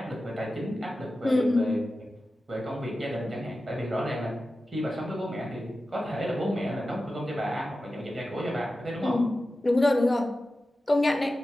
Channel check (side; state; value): both; normal; correlation 0.93